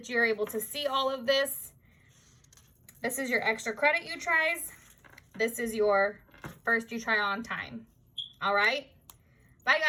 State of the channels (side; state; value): both; identical; correlation 1.00